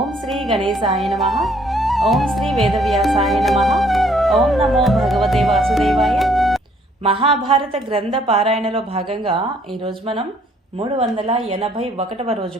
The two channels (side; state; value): both; normal; correlation 0.64